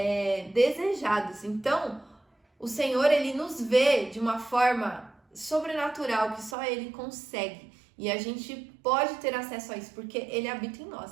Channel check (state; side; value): drops out; left; at 6.6 s